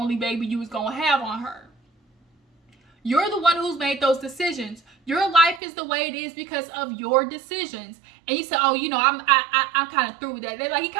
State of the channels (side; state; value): left; drops out; at 5.6 s